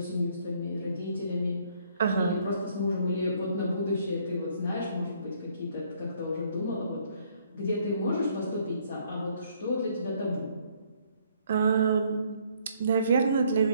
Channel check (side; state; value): both; inverted; correlation -0.65